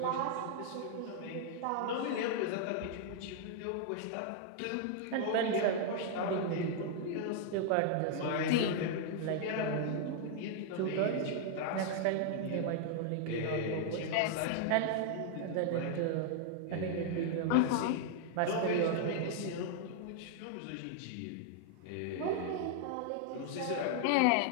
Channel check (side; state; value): both; different; correlation 0.00